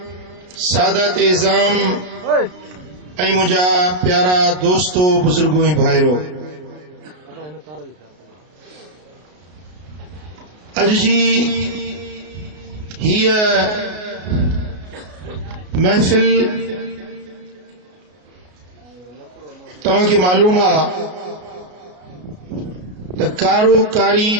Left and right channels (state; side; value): late; left; 33 ms